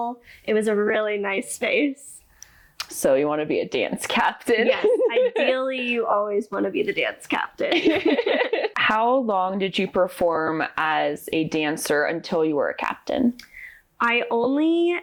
It was a really nice space. So you want to be a dance captain? Yes. Ideally, you always want to be the dance captain. How long did you perform as a dancer until you were a captain? I only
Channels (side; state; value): both; identical; correlation 1.00